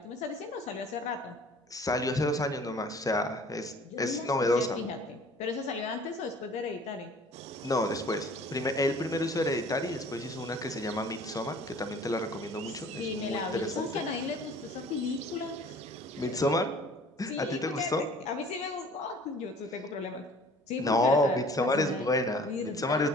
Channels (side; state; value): both; normal; correlation 0.50